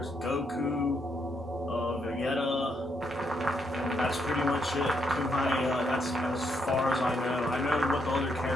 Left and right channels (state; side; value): normal; both; correlation 0.77